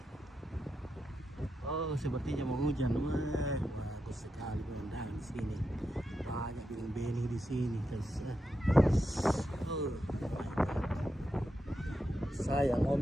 Oh, sepertinya mau hujan. Wah, bagus sekali pemandangan di sini. Banyak bening-bening di sini. Oh, sayang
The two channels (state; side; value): normal; both; correlation 0.86